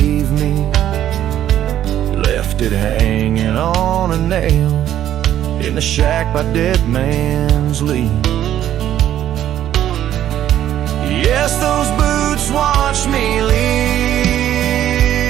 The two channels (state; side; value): quieter; left; 11.5 dB